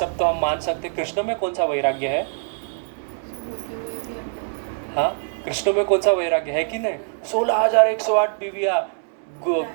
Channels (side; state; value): left; silent; digital silence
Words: तो हम मान सकते, कृष्ण में कौन सा वैराग्य है? हाँ, कृष्ण में कौन सा वैराग्य है कि नहीं? 16,108 बीवियाँ,